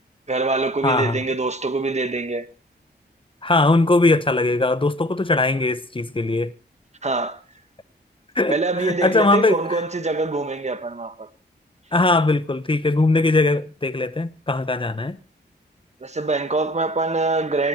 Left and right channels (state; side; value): normal; both; correlation 0.50